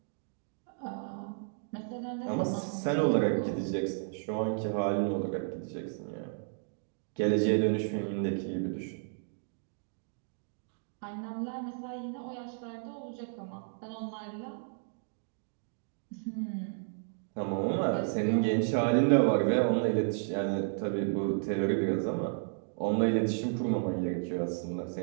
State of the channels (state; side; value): silent; left; digital silence